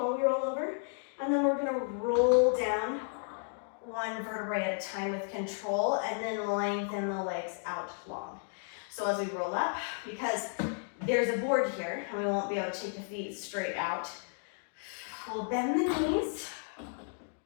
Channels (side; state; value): right; silent; 56 dB below the other